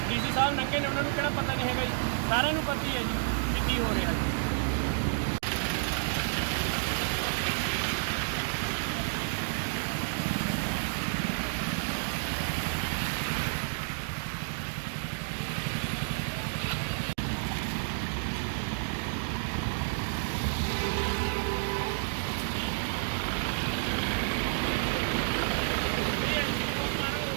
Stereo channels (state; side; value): silent; left; digital silence